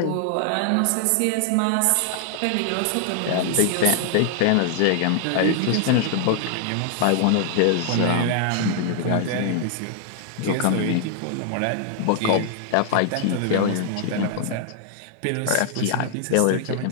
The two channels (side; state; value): both; different; correlation 0.00